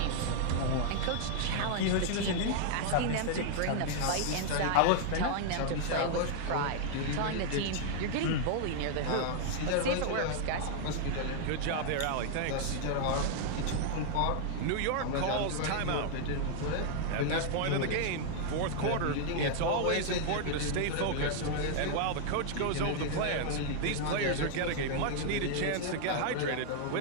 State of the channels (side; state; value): both; different; correlation 0.00